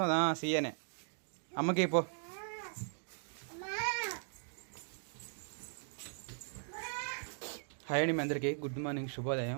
సీయనే. అమ్మకి పో. హాయ్ అండి, మీ అందరికీ గుడ్ మార్నింగ్, శుభోదయం.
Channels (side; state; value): left; silent; digital silence